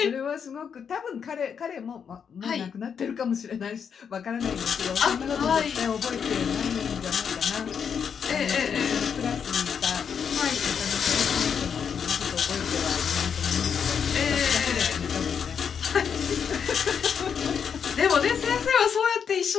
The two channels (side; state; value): right; quieter; 7.1 dB